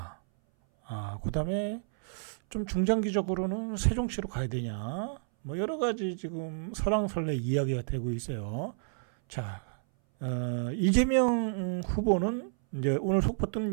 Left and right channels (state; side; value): silent; left; 57 dB below the other